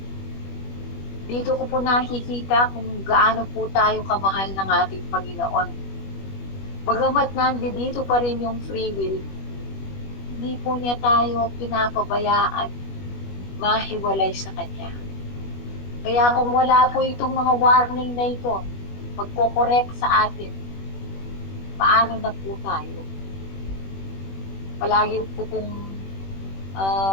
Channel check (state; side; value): late; right; 21 ms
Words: dito ko po nakikita kung gaano po tayo kamahal ng ating Panginoon. Bagamat nandito pa rin yung free will, hindi po niya tayo pinapabayaan mahiwalay sa Kanya. Kaya kung wala po itong mga warning na ito, magko-correct sa atin, paano na po tayo? Palagi po kong